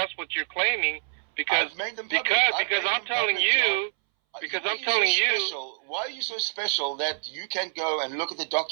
what you're claiming? Because I've made them public. because I'm telling you. Because I'm telling you. Why are you so special that you can go and look at the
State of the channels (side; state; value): left; silent; 60 dB below the other